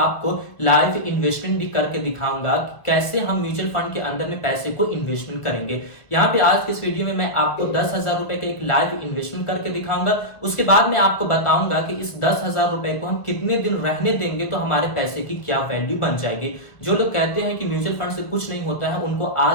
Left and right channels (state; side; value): late; right; 1.7 ms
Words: लाइव इन्वेस्टमेंट भी करके दिखाऊंगा कि कैसे हम म्यूचुअल फंड के अंदर में पैसे को इन्वेस्टमेंट करेंगे। यहाँ पे आज के इस वीडियो में मैं आपको 10,000 रुपए का एक लाइव इन्वेस्टमेंट करके दिखाऊंगा। उसके बाद मैं आपको बताऊंगा कि इस 10,000 रुपए को हम कितने दिन रहने देंगे तो हमारे पैसे की क्या वैल्यू बन जाएगी। जो लोग कहते हैं कि म्यूचुअल फंड से कुछ नहीं होता है, उनको